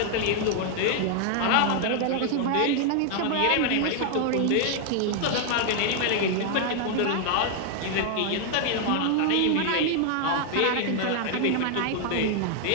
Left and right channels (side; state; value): both; different; correlation 0.00